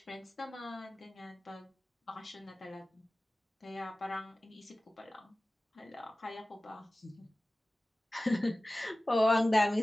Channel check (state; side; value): normal; both; correlation 0.97